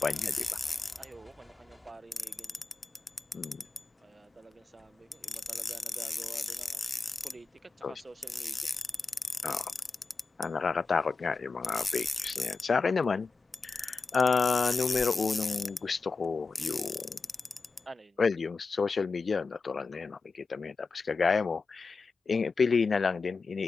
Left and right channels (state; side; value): quieter; right; 4.2 dB